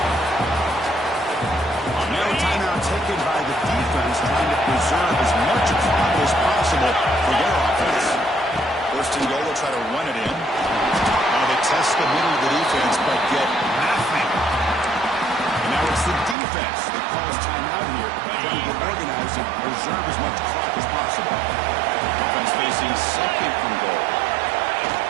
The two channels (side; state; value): left; drops out; at 16.4 s